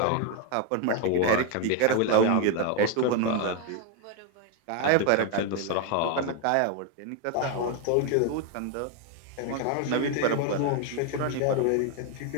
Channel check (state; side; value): different; both; correlation 0.01